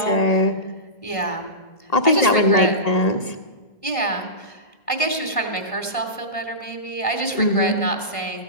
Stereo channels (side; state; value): right; late; 1.5 ms